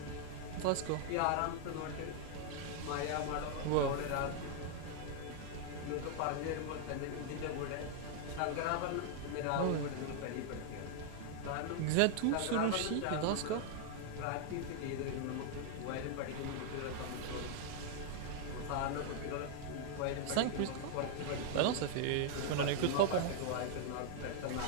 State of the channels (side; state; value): both; different; correlation 0.00